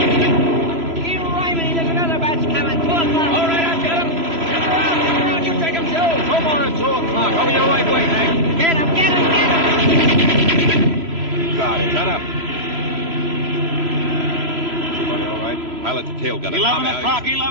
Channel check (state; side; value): late; left; 3.0 ms